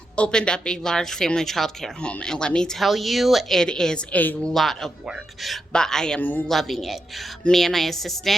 opened up a large family child care home. And let me tell you, it is a lot of work, but I am loving it. Me and my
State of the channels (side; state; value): both; normal; correlation 0.85